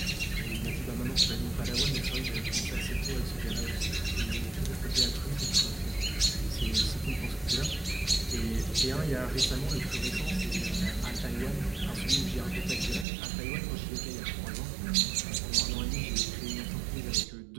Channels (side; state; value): left; drops out; at 13.1 s